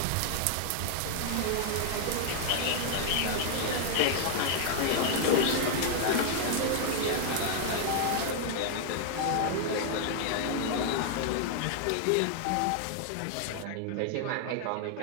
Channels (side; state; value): both; different; correlation 0.00